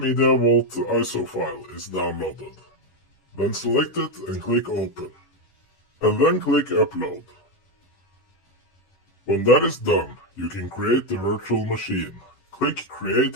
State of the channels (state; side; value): late; right; 11 ms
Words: ISO file is downloaded. Then select it and click Open. And then click Upload. When that is done, you can create the virtual machine. Click Create